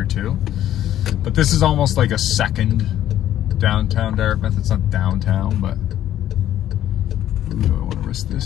too. But this is almost like a second downtown Dartmouth. It's not downtown, but ooh, do I want to risk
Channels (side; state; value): right; quieter; 12.0 dB